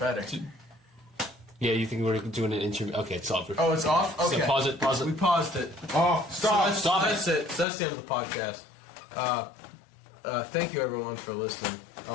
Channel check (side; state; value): right; drops out; at 7.7 s